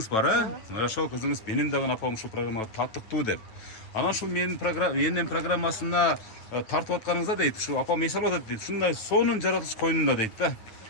бар, Ошол кызыңыз менин дагы апам ушул программага таттыктуу деп. Анан ушул менин энем программасына тартып атканыңызда дейт, ушу апам эс алып атат дейт. Ушундай сонун жаратылыш койнунда дейт да.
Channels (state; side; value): late; right; 9.2 ms